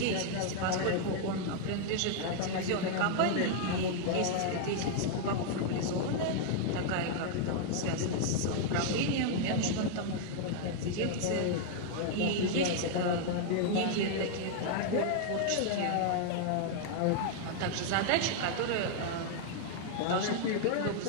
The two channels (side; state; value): both; different; correlation 0.00